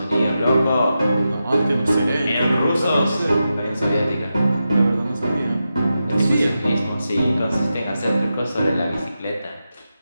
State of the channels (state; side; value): inverted; both; correlation -0.90